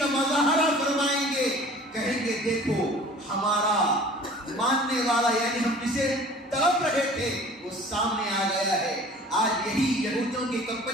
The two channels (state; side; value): normal; both; correlation 0.46